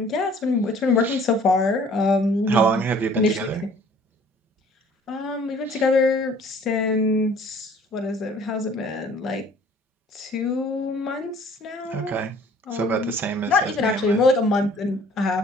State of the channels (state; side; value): normal; both; correlation 0.54